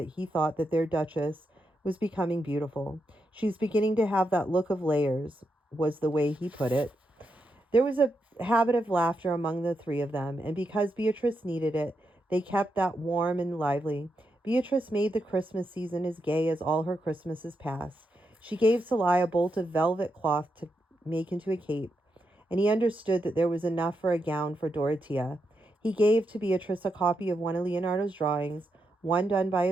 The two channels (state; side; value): normal; both; correlation 0.84